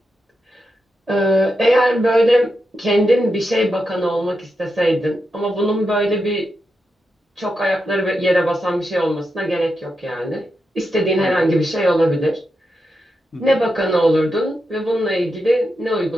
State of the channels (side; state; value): both; normal; correlation 0.87